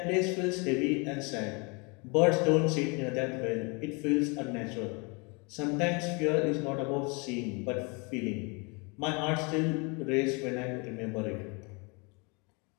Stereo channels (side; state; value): right; quieter; 30.8 dB